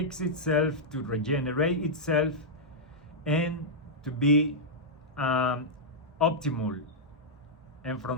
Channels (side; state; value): both; normal; correlation -0.08